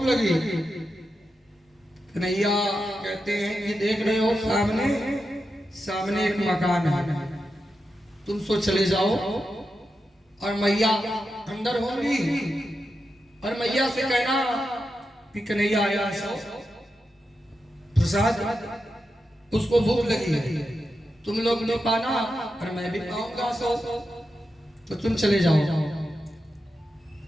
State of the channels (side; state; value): both; normal; correlation 0.88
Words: लगी। कन्हैया कहते हैं कि देख रहे हो सामने एक मकान है, तुम सो चले जाओ और मैया अंदर होंगी, और मैया से कहना कि कन्हैया आया सो प्रसाद, उसको भूख लगी है। तुम लोग नहीं पाना और मैं भी पाऊंगा सो, तो तुम चले जाओ।